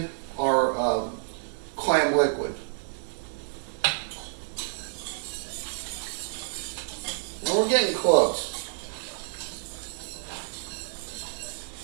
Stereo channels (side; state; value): left; silent; digital silence